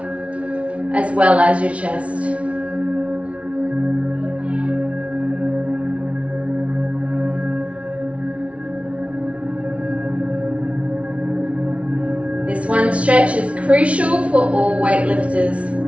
as well as your chest. This one stretch is crucial for all weightlifters,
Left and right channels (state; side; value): late; left; 0.063 ms